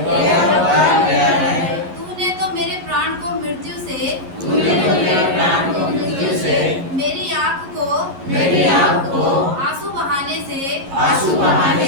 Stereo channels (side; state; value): left; late; 11 ms